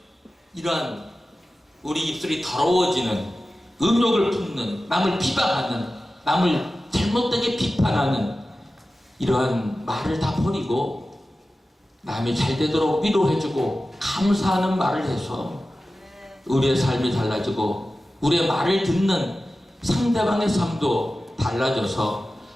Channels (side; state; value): both; normal; correlation 0.95